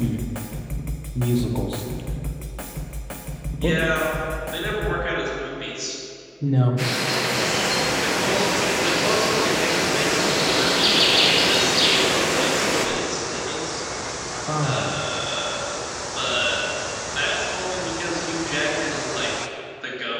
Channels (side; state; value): both; identical; correlation 1.00